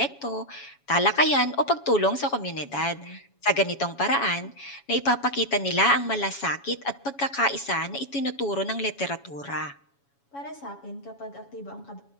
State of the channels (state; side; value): late; right; 7.2 ms